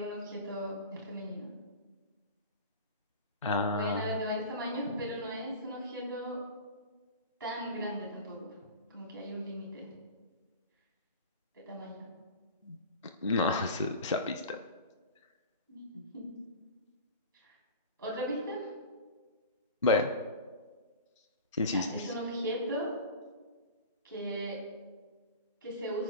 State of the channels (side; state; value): both; inverted; correlation -0.33